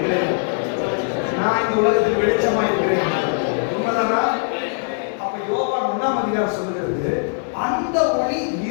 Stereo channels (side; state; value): right; silent; digital silence